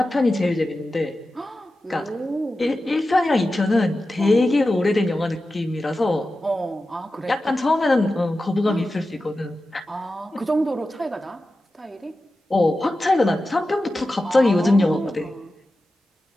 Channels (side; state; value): both; normal; correlation 0.93